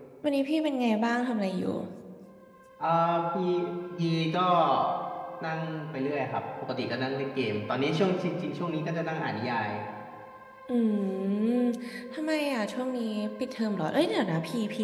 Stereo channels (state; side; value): identical; both; correlation 1.00